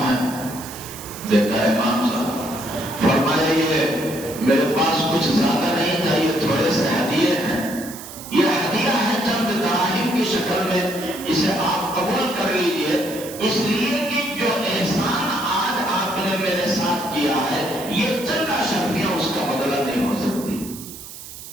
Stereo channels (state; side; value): noise; right; hiss, 13 dB below the sound